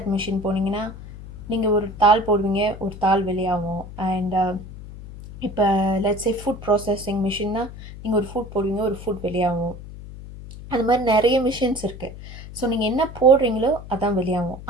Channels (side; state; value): left; noise; hum, 13 dB below the sound